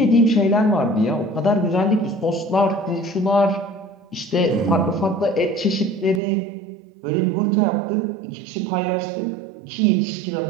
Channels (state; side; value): drops out; left; at 6.2 s